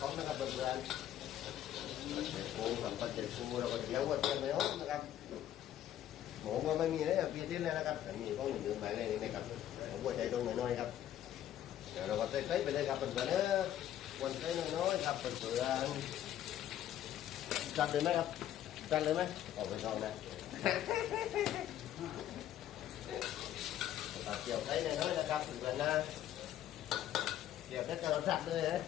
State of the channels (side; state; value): right; quieter; 11.6 dB